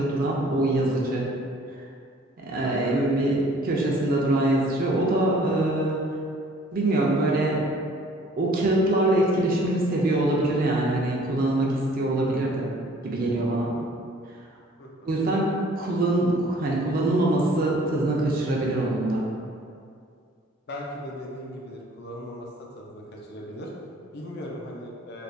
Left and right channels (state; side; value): normal; both; correlation 0.55